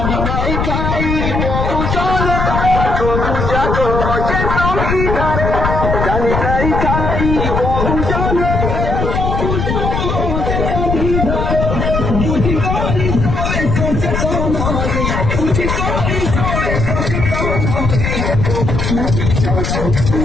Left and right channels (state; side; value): noise; left; rumble, 1 dB below the sound